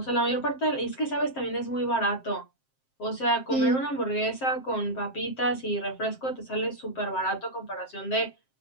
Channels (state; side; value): late; right; 7.6 ms